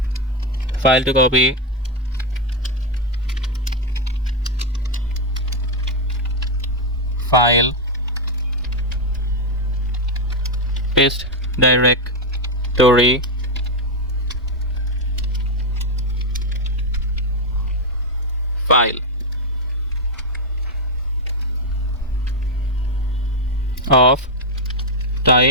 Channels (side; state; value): both; normal; correlation 0.03